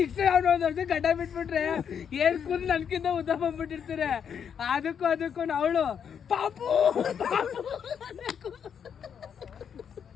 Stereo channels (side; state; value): right; quieter; 7.7 dB